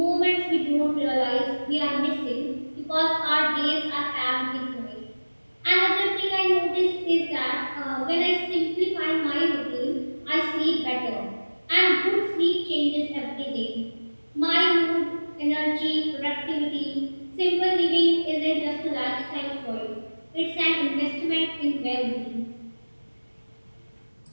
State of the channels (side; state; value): both; inverted; correlation -1.00